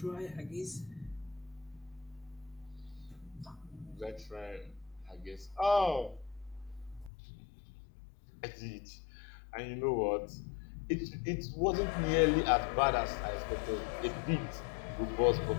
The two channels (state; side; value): drops out; right; at 7.1 s